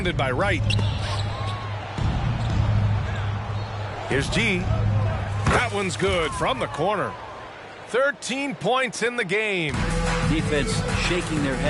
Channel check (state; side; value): identical; both; correlation 1.00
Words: by Wright. Here's G. That one's good from the corner. 13 points in the game. Defense shaking their